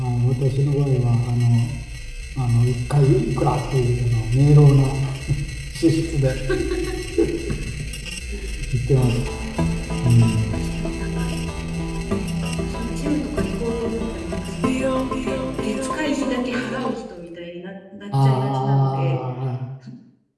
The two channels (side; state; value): both; identical; correlation 1.00